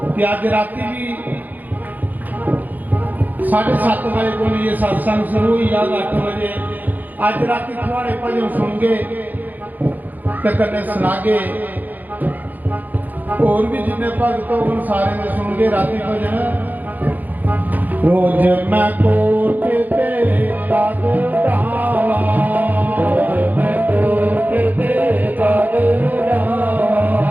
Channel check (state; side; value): late; left; 0.083 ms